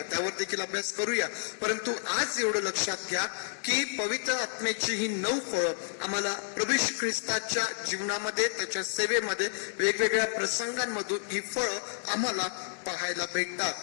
त्यावर देखील अभ्यास करूया. परंतु आज एवढं लक्षात घ्या की पवित्र आत्म्याची ही 9 फळं आम्हाला प्रभू येशू ख्रिस्ताच्या जीवनामध्ये, त्याच्या सेवेमध्ये वेगवेगळ्या प्रसंगांमधून ही फळं आम्हाला पाहायला भेटतात.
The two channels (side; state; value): right; silent; digital silence